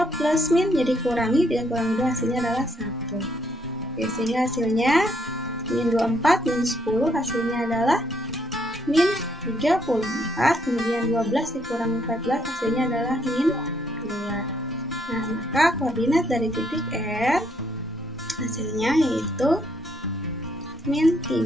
plus min, jadi kurangi, 3 kurangi 2 hasilnya adalah 1. Oke, sehingga hasilnya min 24, min 10 hasilnya adalah min 34, kemudian 12 dikurangi 14 hasilnya adalah min 2. Nah, maka koordinat dari titik R hasilnya yaitu min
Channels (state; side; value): normal; both; correlation 0.72